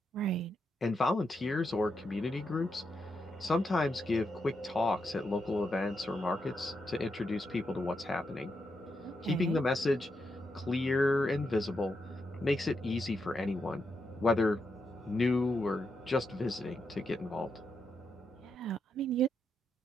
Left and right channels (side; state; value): both; normal; correlation 0.83